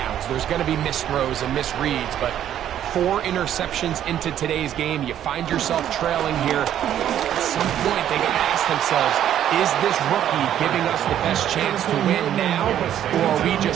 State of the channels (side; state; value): left; quieter; 10.8 dB